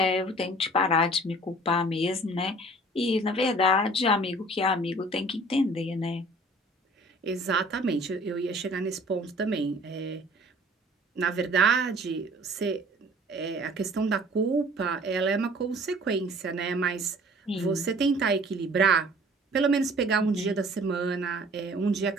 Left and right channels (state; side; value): normal; both; correlation 0.50